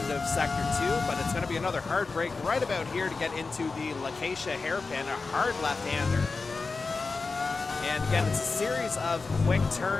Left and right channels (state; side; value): quieter; right; 4.1 dB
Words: of Sector 2, but it's going to be another hard break right about here to get into the Lacacia hairpin, a hard left-hander. And again, it's a series of quick